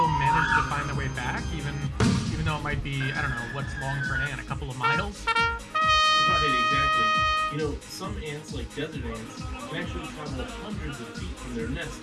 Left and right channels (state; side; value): identical; both; correlation 1.00